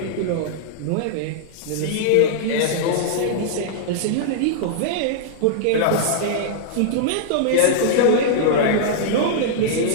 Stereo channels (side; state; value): both; different; correlation -0.02